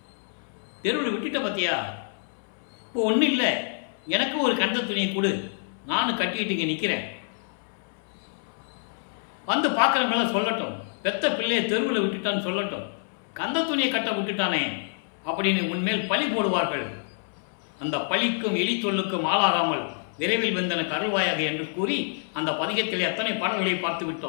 தெருவில் விட்டுட்ட பார்த்தியா, இப்போ ஒன்றும் இல்லை, எனக்கு ஒரு கந்த துணியை கொடு, நானும் கட்டிக்கிட்டு இங்கே நிற்கிறேன், வந்து பார்க்குறவங்களாம் சொல்லட்டும், பெத்த பிள்ளையை தெருவில் விட்டுட்டான்னு சொல்லட்டும், கந்த துணியை கட்ட விட்டுட்டானே அப்படின்னு உன்மேல் பழி போடுவார்கள். அந்த பழிக்கும் எலி சொல்லுக்கும் ஆளாகாமல் விரைவில் வந்தனுக்கு அருள்வாயாக என்று கூறி அந்த பதிகத்திலே அத்தனை பாடல்களை பார்த்து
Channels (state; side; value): silent; right; 60 dB below the other